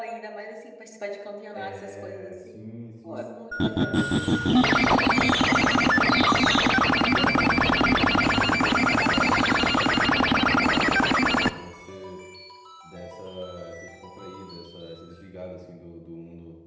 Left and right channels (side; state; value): both; identical; correlation 1.00